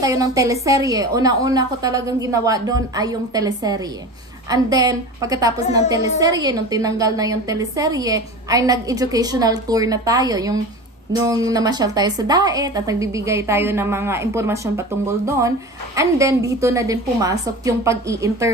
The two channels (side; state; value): both; normal; correlation 0.32